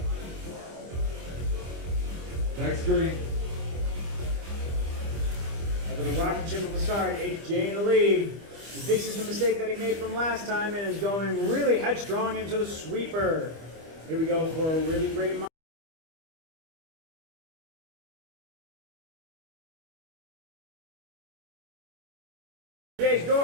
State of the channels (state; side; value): late; left; 25 ms